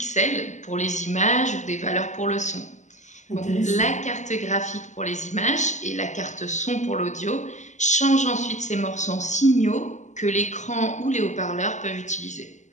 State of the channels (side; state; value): right; late; 0.34 ms